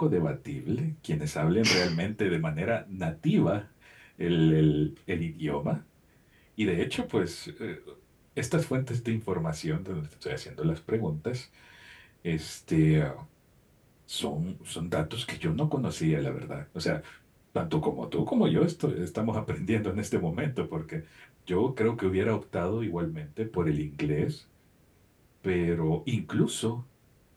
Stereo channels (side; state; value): both; identical; correlation 1.00